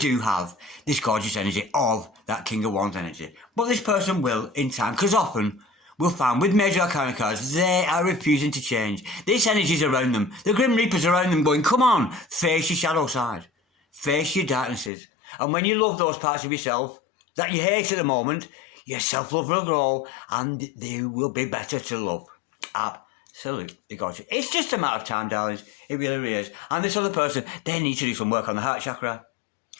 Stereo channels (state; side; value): drops out; right; at 14.9 s